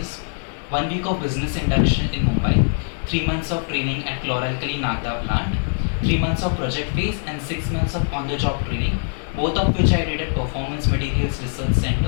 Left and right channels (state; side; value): silent; right; digital silence